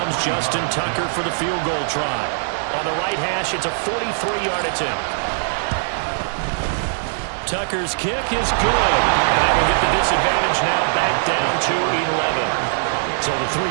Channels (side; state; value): left; silent; digital silence